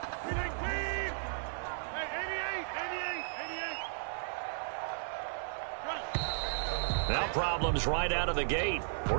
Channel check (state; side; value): silent; left; digital silence